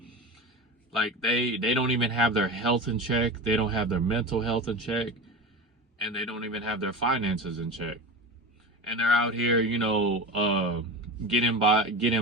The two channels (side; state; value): both; normal; correlation 0.27